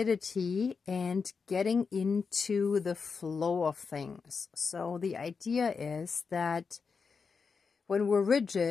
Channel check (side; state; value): right; quieter; 5.3 dB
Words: and getting into the flow of things. So the idea is that when we're